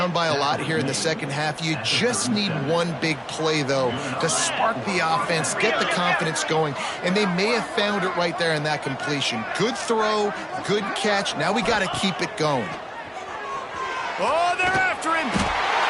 by a lot here in the second half. You just need one big play, though, to spark the offense, get the confidence going, and they may have found it right there in that completion. Good throw, good catch. Now we got to keep it going. Oh, they're after him.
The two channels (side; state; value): both; identical; correlation 1.00